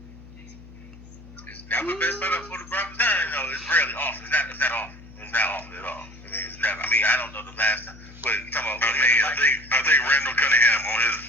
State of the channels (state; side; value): noise; left; hum, 19 dB below the sound